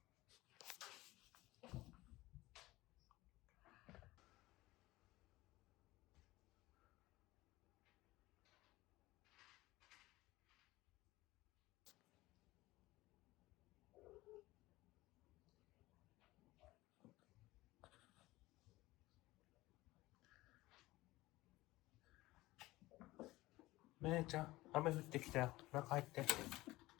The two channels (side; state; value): right; quieter; 18.7 dB